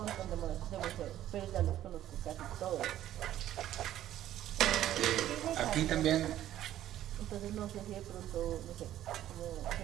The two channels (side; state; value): left; quieter; 12.6 dB